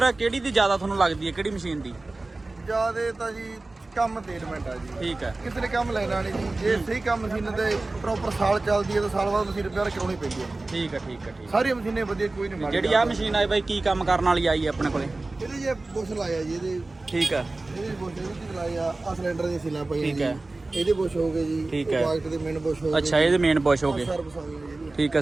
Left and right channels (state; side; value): quieter; left; 3.1 dB